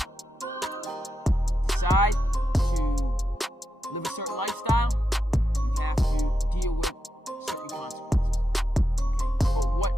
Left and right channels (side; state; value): both; normal; correlation 0.87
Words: decide to live a certain lifestyle, you have to deal with certain consequences. Okay? But what